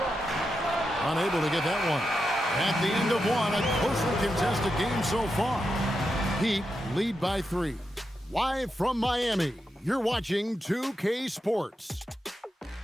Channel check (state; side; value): normal; both; correlation 0.87